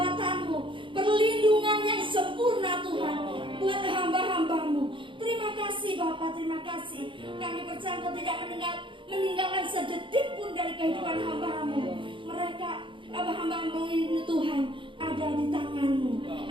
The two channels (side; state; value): left; late; 0.24 ms